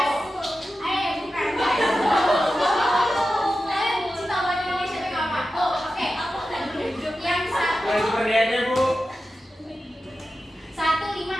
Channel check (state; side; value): normal; both; correlation 0.92